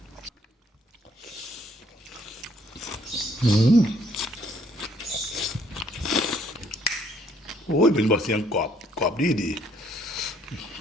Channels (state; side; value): normal; both; correlation 0.65